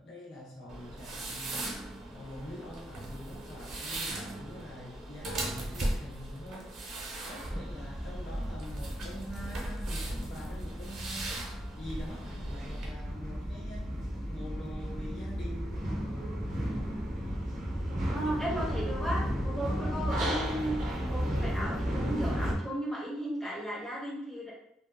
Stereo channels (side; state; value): both; normal; correlation 0.84